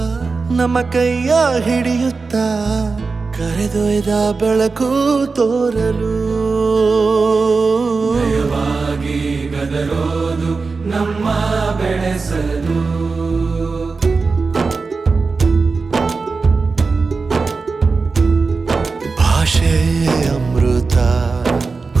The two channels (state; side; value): quieter; left; 4.3 dB